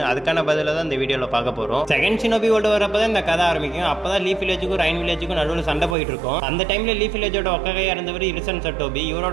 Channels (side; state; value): left; drops out; at 6.0 s